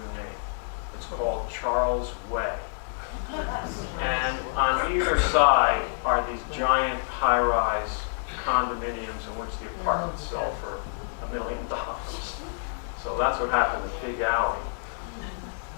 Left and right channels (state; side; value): silent; right; digital silence